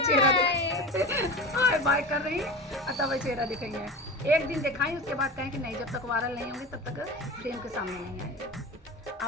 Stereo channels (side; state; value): both; normal; correlation 0.30